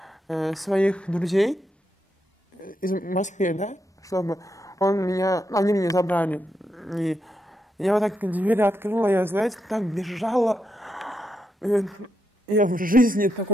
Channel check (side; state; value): both; normal; correlation 0.83